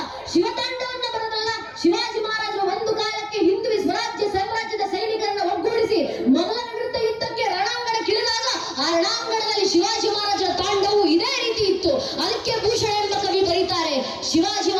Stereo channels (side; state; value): both; identical; correlation 1.00